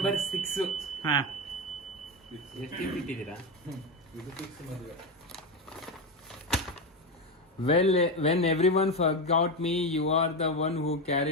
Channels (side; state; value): both; normal; correlation 0.13